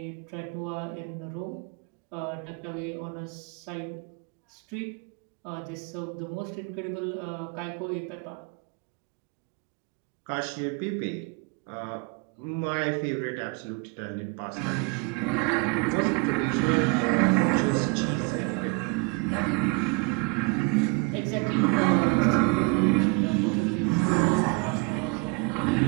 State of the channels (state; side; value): quieter; left; 29.4 dB